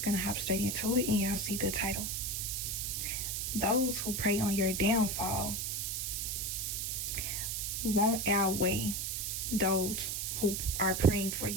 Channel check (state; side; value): noise; right; hiss, 2 dB below the sound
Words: gonna hop straight into it, and y'all see the title. Those who prey on your downfall won't outweigh those who are praying for